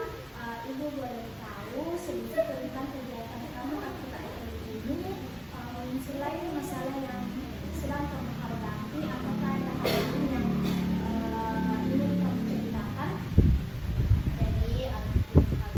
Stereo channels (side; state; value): both; identical; correlation 1.00